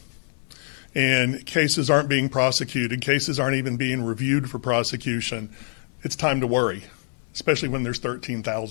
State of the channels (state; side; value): silent; right; 62 dB below the other